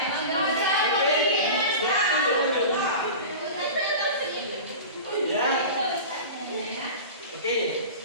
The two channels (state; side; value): inverted; both; correlation -0.32